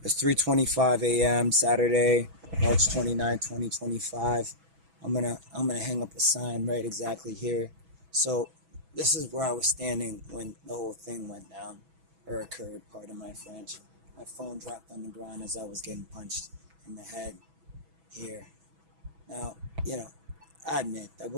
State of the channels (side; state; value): left; late; 6.1 ms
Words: It's 3:25 a.m. Saturday, March 29, 2025. I'm gonna hang up a sign right exactly here. So this is where I was standing when the whole thing went down or occurred, pardon my French. My phone dropped on the ground as I was getting punched in the head here. Now, you know, I admit that